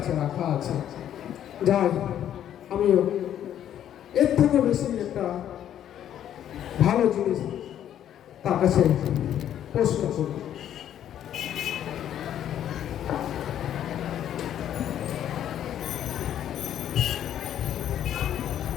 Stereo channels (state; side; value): quieter; right; 10.6 dB